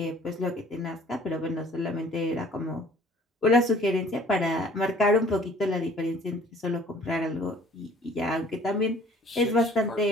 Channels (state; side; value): normal; both; correlation 0.54